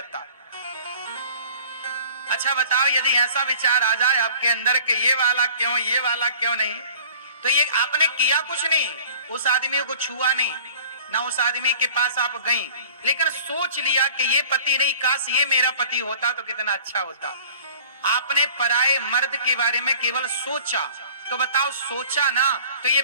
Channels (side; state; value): both; inverted; correlation -0.47